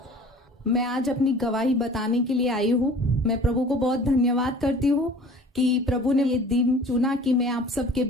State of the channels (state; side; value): normal; both; correlation 0.46